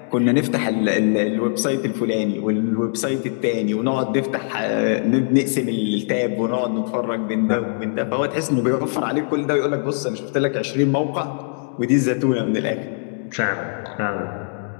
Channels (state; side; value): silent; right; 59 dB below the other